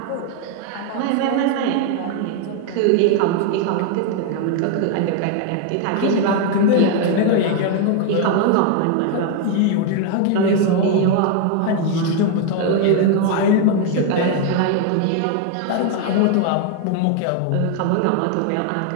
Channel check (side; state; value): both; different; correlation 0.01